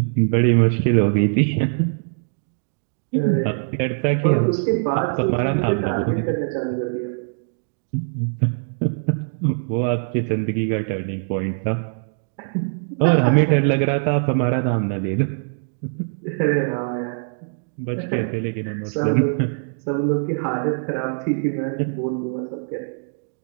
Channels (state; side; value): silent; left; digital silence